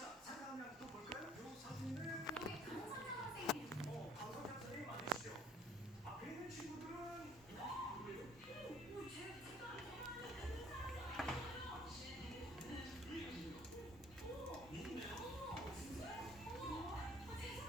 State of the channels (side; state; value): both; normal; correlation 0.57